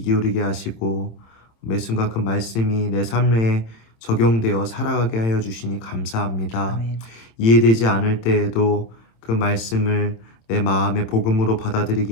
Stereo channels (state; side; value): late; right; 26 ms